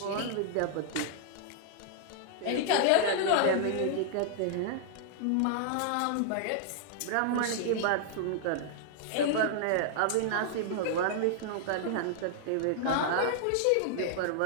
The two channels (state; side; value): different; both; correlation -0.01